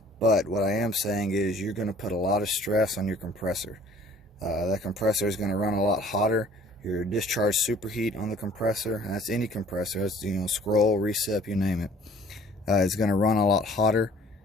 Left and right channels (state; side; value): normal; both; correlation 0.53